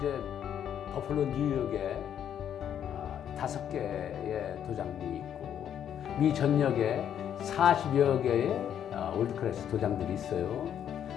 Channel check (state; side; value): quieter; right; 9.5 dB